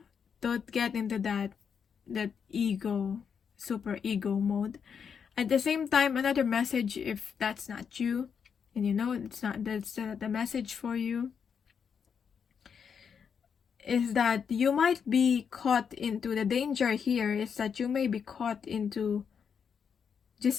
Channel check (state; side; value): quieter; right; 6.8 dB